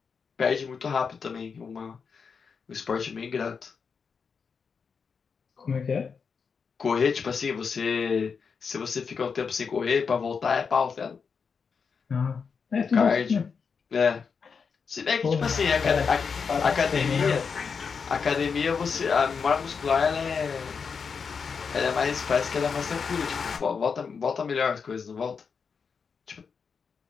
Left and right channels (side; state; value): right; quieter; 5.8 dB